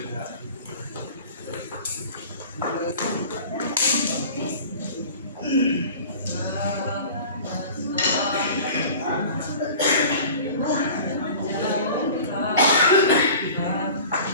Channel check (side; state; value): both; inverted; correlation -0.41